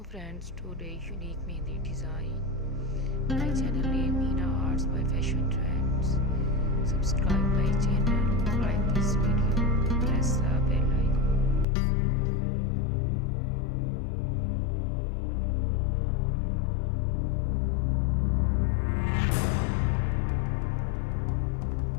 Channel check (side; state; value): right; drops out; at 11.7 s